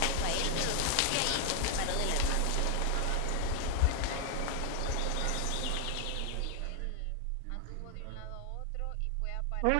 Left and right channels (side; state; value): both; different; correlation 0.00